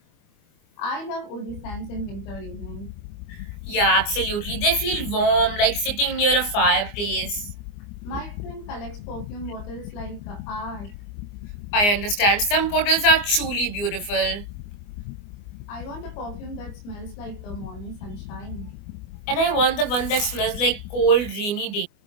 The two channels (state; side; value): late; right; 24 ms